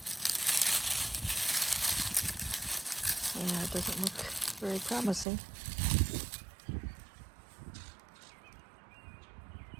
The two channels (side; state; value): left; drops out; at 5.2 s